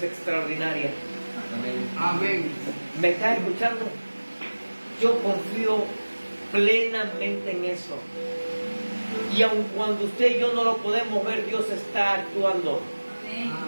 extraordinarias. Amén. ¿Me estás escuchando? Yo confío plenamente en eso. Y aun cuando usted y yo no lo podemos ver, Dios está actuando. Amén.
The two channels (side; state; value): both; inverted; correlation -1.00